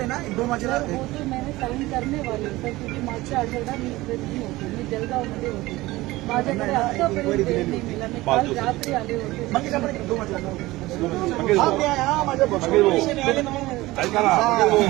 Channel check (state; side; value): quieter; left; 19.0 dB